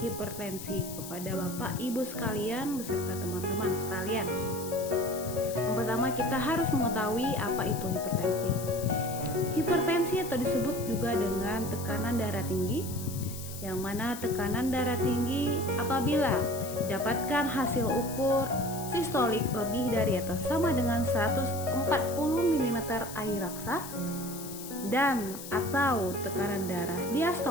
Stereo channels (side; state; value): left; noise; hiss, 11 dB below the sound